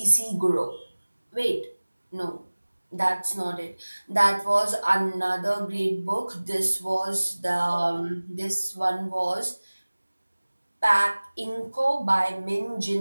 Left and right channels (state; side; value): inverted; both; correlation -1.00